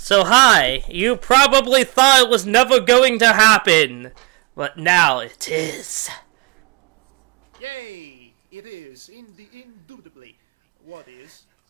hi, you probably thought it was never going to happen, but now it is. Yay! It is, indubitably. What is?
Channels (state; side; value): quieter; left; 29.3 dB